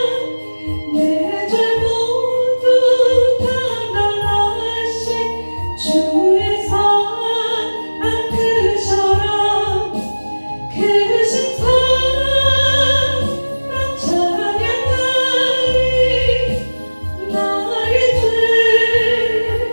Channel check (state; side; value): inverted; both; correlation -1.00